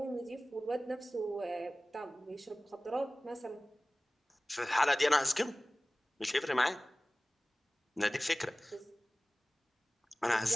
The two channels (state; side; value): normal; both; correlation 0.98